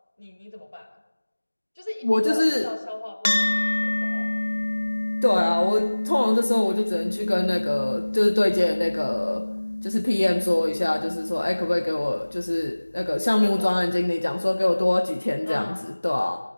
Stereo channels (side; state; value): both; inverted; correlation -1.00